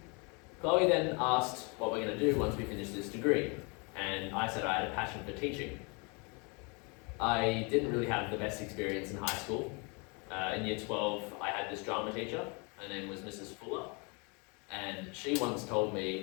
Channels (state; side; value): quieter; right; 31.9 dB